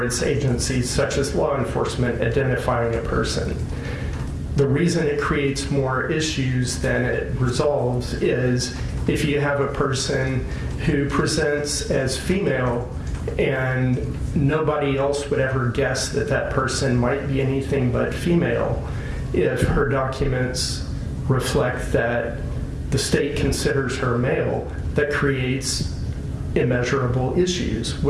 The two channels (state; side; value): identical; both; correlation 1.00